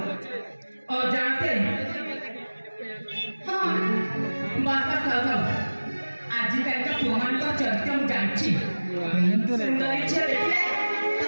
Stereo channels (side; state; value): both; inverted; correlation -1.00